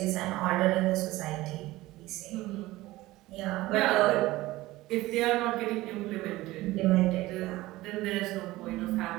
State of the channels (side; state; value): left; quieter; 18.2 dB